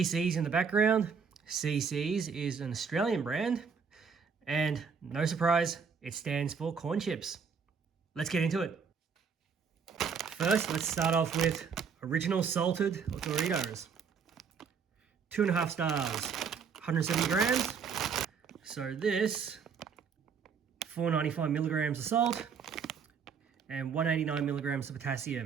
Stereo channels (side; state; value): left; quieter; 6.1 dB